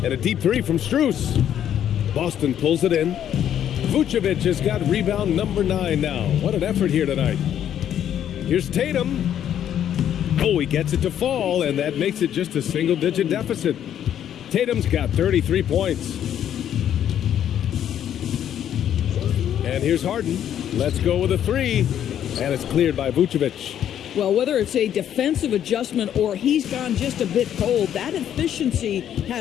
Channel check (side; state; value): right; quieter; 10.2 dB